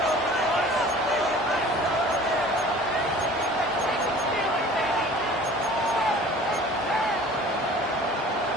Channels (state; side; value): normal; both; correlation 0.46